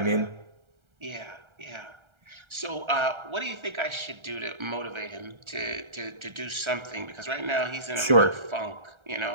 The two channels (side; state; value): left; late; 1.3 ms